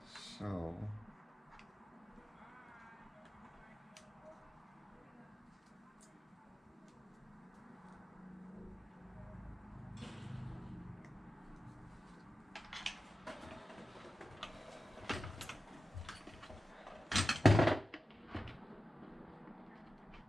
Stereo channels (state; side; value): normal; both; correlation 0.92